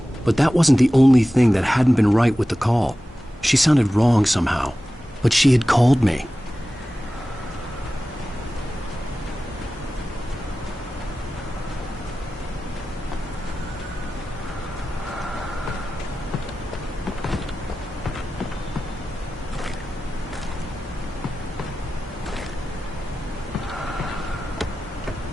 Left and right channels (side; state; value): both; normal; correlation 0.95